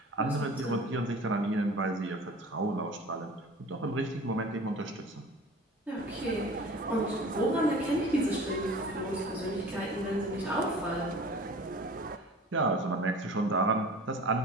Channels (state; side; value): normal; both; correlation 0.42